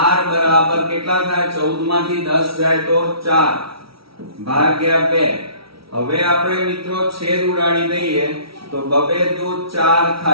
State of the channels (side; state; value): left; late; 0.75 ms